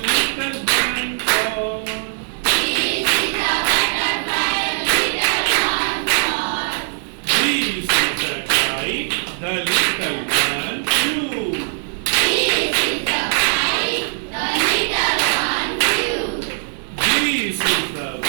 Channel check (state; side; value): silent; left; 57 dB below the other